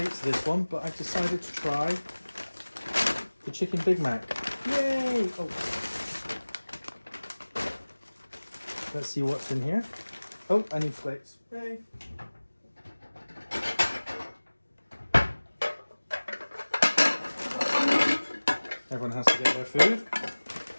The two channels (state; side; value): inverted; both; correlation -1.00